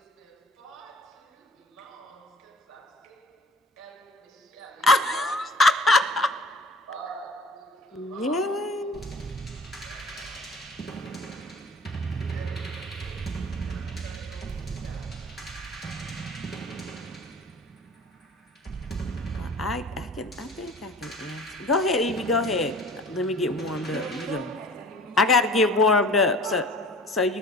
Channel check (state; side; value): normal; both; correlation 0.45